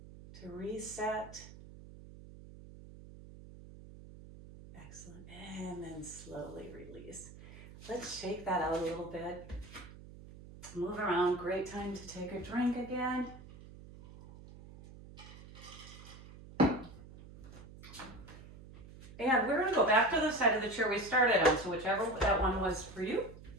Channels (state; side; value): noise; right; hum, 17 dB below the sound